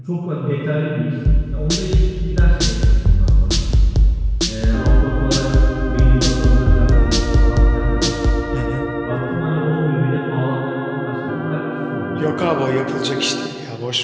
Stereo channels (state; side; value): identical; both; correlation 1.00